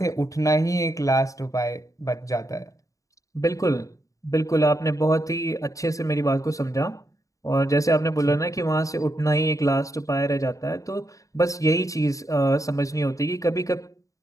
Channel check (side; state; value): right; late; 0.16 ms